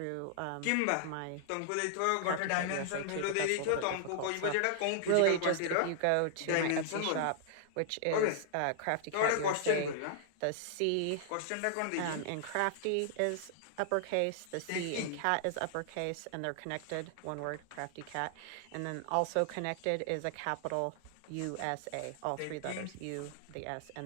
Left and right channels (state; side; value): different; both; correlation -0.01